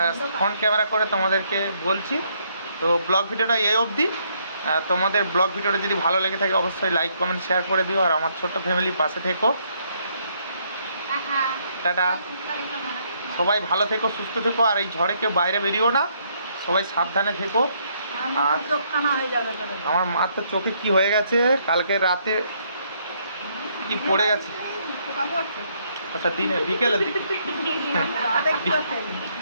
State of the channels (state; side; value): inverted; both; correlation -0.71